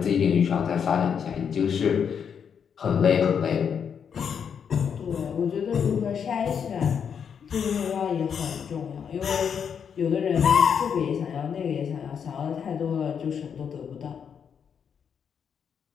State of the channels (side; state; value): right; quieter; 7.3 dB